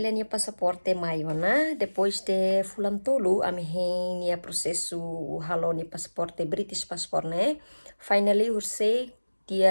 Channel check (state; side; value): inverted; both; correlation -1.00